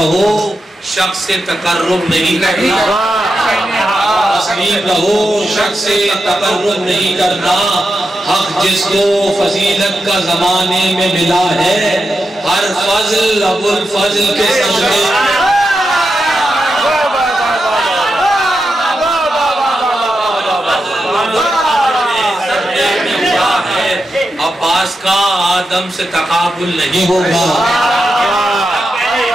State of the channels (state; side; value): normal; both; correlation 0.88